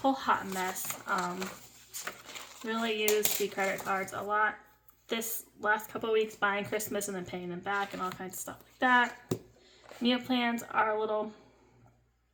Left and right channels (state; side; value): identical; both; correlation 1.00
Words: hot mess. Really use the credit cards a lot this last couple of weeks, buying Christmas and then paying them back and all kinds of stuff like that. Meal plans are a little